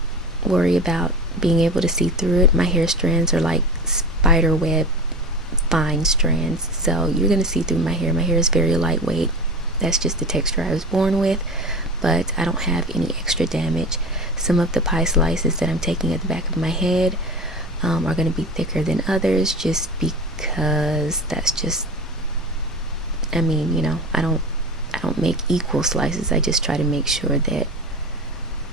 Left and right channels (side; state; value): both; normal; correlation 0.31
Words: worry about being able to see through it. My hair strands are like spider web fine strands, so you're going to see through my hair. My hair is very lightweight. That's just the texture I was born with, but I don't have any extra damage. Some of the pie slices that I'm taking at the back of my head are going to be thicker than others, just because that's just, I mean, you know, I don't make equal slices. I just try to make sure that